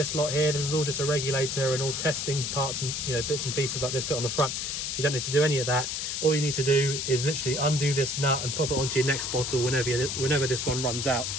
lot here. This is all just a regulator and all testing parts and, you know, bits and pieces like this bit on the front. You don't need to do any of that. All you need to do is literally undo this nut and pop it onto your next bottle whenever this one runs out.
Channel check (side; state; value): left; noise; hiss, 3 dB below the sound